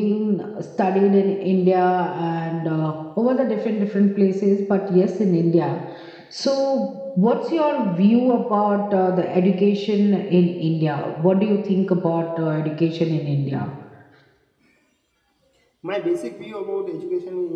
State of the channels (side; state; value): both; identical; correlation 1.00